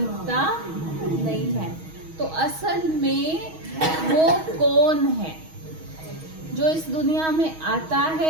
नहीं है। तो असल में वो कौन है जो इस दुनिया में आता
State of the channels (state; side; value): late; left; 6.3 ms